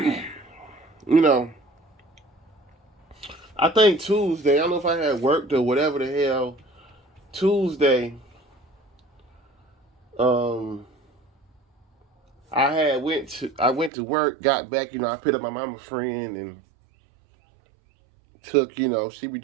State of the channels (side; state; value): left; drops out; at 13.9 s